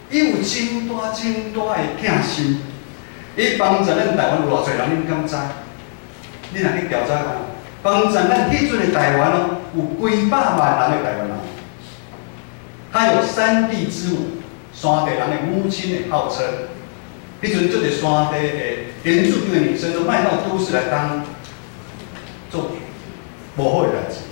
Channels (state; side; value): silent; right; 66 dB below the other